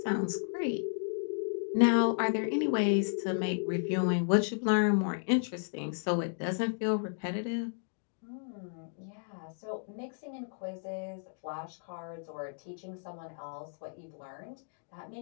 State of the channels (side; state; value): right; silent; digital silence